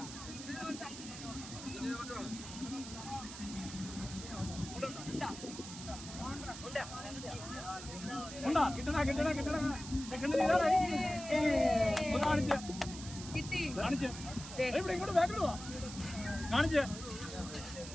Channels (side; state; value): right; noise; hiss, 11 dB below the sound